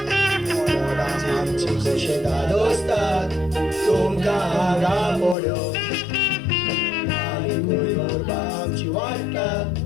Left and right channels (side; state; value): right; drops out; at 5.4 s